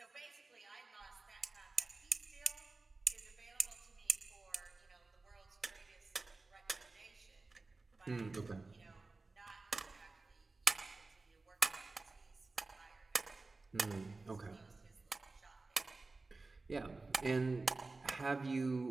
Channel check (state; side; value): quieter; left; 3.6 dB